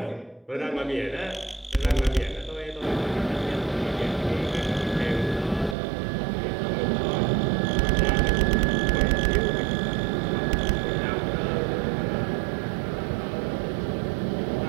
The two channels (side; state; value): left; drops out; at 5.8 s